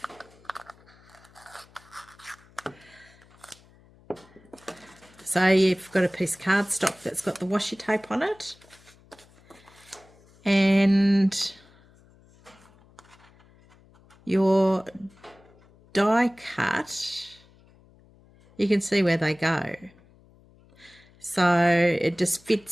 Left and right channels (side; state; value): left; noise; hum, 28 dB below the sound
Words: So you've got a piece of cardstock that's got the washi tape on it, and your die cut, you can see where they go. So it just